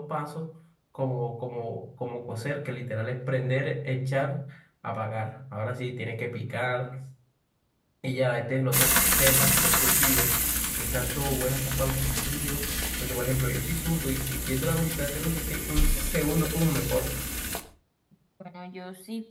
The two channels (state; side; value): identical; both; correlation 1.00